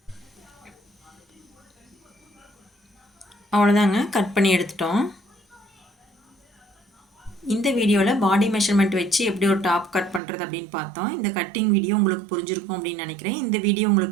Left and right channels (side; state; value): left; drops out; at 10.2 s